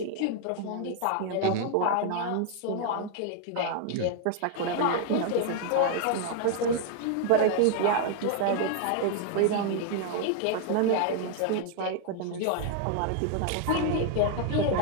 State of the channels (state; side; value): different; both; correlation 0.00